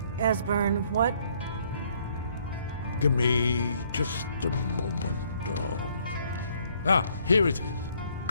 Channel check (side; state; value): both; inverted; correlation -0.65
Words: Esbern, what? Give me just a moment. Here it is.